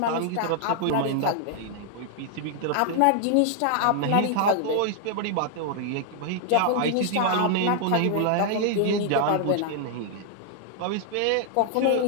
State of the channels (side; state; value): both; different; correlation 0.00